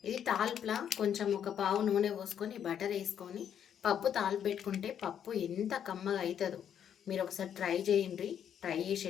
ఇది తాల్పులా కొంచెం ఒక పావు నూనె పోసుకొని బటర్ వేసుకొని పప్పు తాల్పు పెట్టుకుంటే పప్పు ఎంత కమ్మగా అవుతుందో మీరు ఒకసారి ట్రై చేయండి. ట్రై చేసి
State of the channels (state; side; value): quieter; right; 9.0 dB